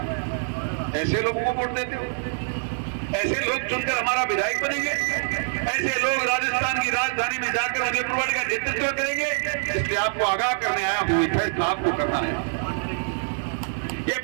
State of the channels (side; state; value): left; silent; 62 dB below the other